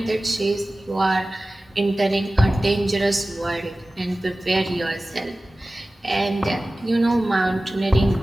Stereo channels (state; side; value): normal; both; correlation 0.96